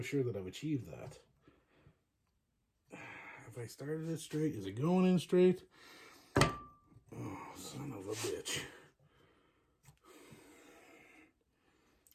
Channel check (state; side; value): identical; both; correlation 1.00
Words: sure that I've achieved that. Have I started it straight? Is it going in straight? Oh, son of a bitch.